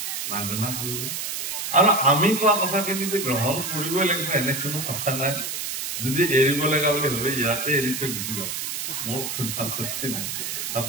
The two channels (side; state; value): right; noise; hiss, 4 dB below the sound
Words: মাৰ্জনা কৰিব আৰু আমি কোৱা কথাখিনি যে গ্ৰহণ কৰিবই লাগিব এনে কোনো কথা নাই যদি এৰিব লগা বুলি ভাবে ইয়াতে এৰি থৈ গুচি যাওক মোৰ কোনো আপত্তি নাই